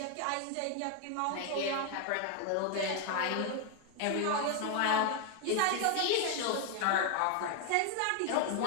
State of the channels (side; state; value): both; different; correlation 0.00